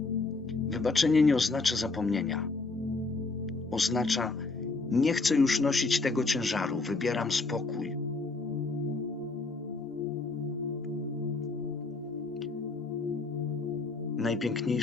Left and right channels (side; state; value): right; quieter; 3.7 dB